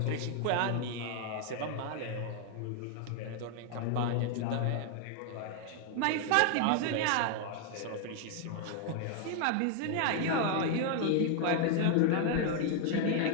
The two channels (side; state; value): both; different; correlation 0.00